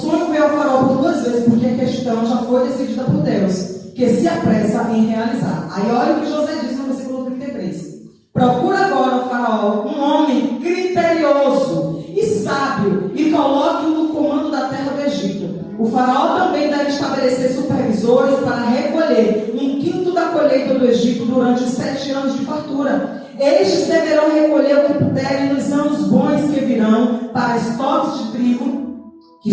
veio ao faraó por 2 vezes, porque a questão já foi decidida por Deus, que se apressa em realizar. Aí olha o que José diz no versículo 33. Procura agora o faraó um homem criterioso e sábio e coloque-o no comando da terra do Egito. O faraó também deve estabelecer supervisores para recolher 1/5 da colheita do Egito durante os 7 anos de fartura. Estes deverão recolher o que puderem nos anos bons que virão para estoques de trigo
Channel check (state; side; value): identical; both; correlation 1.00